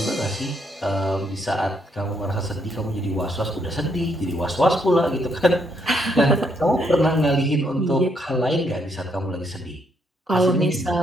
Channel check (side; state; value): both; normal; correlation 0.73